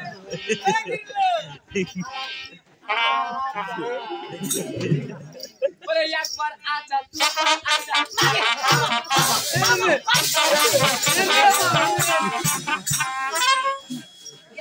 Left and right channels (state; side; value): identical; both; correlation 1.00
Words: বলে একবার আচ্ছা তুই আচ্ছা